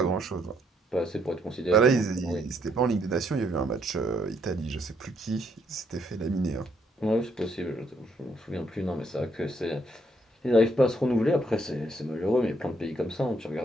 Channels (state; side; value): normal; both; correlation 0.71